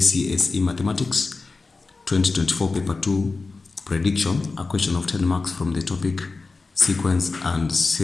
Mathematics 2024 Paper 2 Prediction, a question of 10 marks from the topic Sequence and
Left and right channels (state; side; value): quieter; right; 3.9 dB